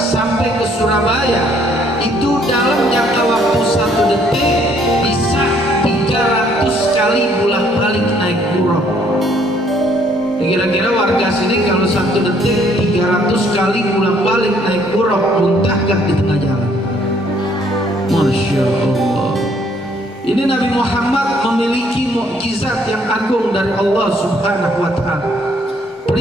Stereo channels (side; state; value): both; normal; correlation 0.65